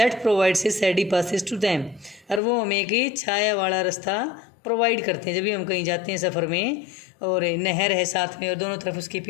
provides a shady passes to them, और वो हमें एक छाया वाला रास्ता प्रोवाइड करते हैं. जब भी हम कहीं जाते हैं सफ़र में और नहर है साथ में और दोनों तरफ उसके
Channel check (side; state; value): right; drops out; at 2.4 s